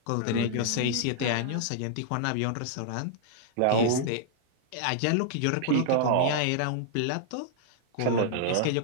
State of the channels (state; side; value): different; both; correlation -0.01